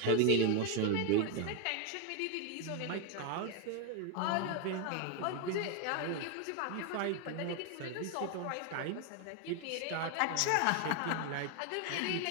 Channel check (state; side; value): different; both; correlation 0.01